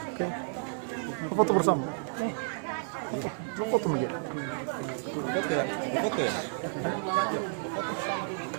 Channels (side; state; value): left; silent; digital silence